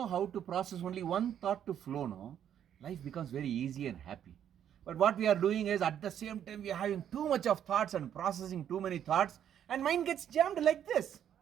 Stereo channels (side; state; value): left; quieter; 9.7 dB